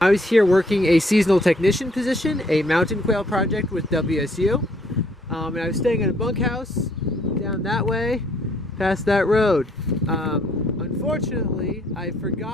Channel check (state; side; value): normal; both; correlation 0.65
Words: was here working a seasonal technician position, a mountain quail project with WSU, and I was staying in a bunkhouse down that way, past that road. Unfortunately, I